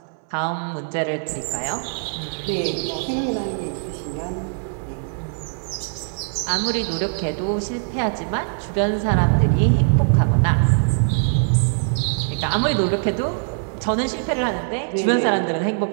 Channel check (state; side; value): silent; left; 61 dB below the other